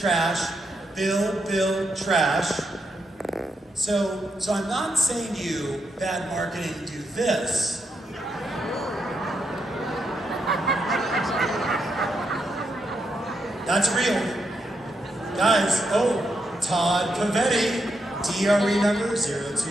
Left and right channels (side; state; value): both; normal; correlation 0.82